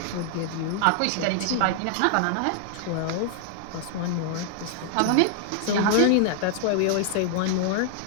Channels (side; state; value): both; different; correlation 0.00